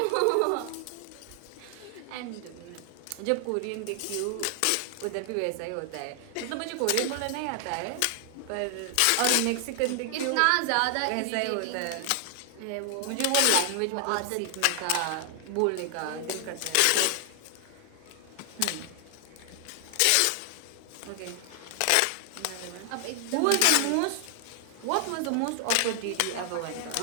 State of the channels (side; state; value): both; different; correlation 0.00